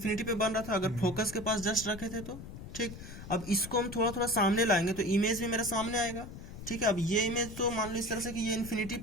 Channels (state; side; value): noise; left; rumble, 12 dB below the sound